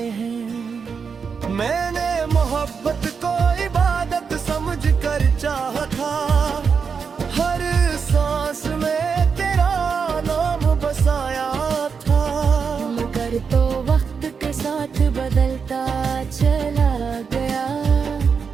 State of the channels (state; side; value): quieter; left; 5.9 dB